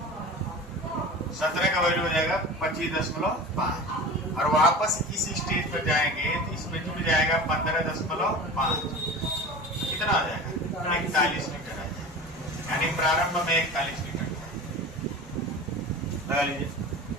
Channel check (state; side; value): normal; both; correlation 0.34